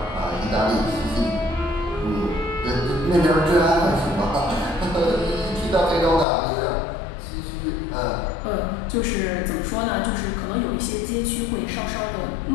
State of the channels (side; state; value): right; drops out; at 6.2 s